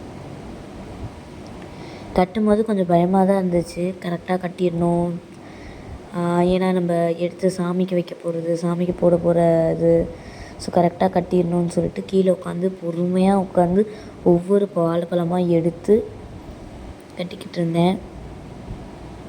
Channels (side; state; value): both; identical; correlation 1.00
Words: கட்டும்போது கொஞ்சம் பயமாக தான் இருந்துச்சு. கரெக்டாக கட்டிடணும், ஏன்னா நம்ம எடுத்து சாமிக்கு வைக்க போகிறது, சாமிக்கு போட போகிறது. ஸோ கரெக்டாக கட்டிடணும்னு சொல்லிட்டு கீழே உட்காந்து பொறுமையாக உட்காந்து ஒவ்வொரு வாழைப்பழமாக எடுத்து கட்டிக்கிட்டு இருந்தேன்.